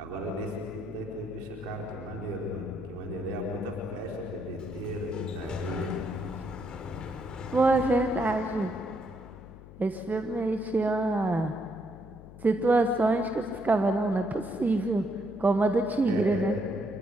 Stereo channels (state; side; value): noise; left; hum, 17 dB below the sound